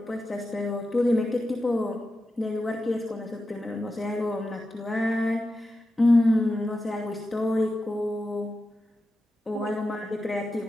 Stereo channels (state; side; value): normal; both; correlation 0.91